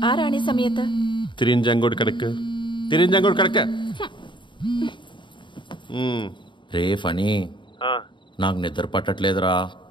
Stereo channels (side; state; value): right; late; 0.23 ms